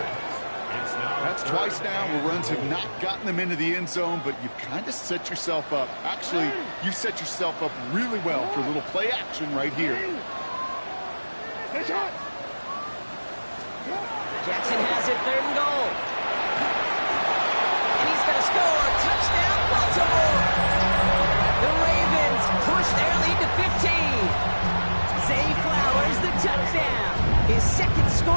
That's twice now where runs have not gotten them into the end zone, but you've kind of set yourself up. Actually, you set yourself up really well for a little play action right here. Jackson has it, 3rd and goal. And he's going to score. Touchdown, Baltimore. The Ravens push their lead to 15. Zay Flowers, the touchdown. His 2nd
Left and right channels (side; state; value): both; inverted; correlation -1.00